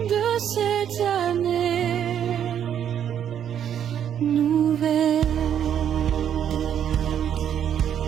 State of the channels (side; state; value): left; quieter; 9.3 dB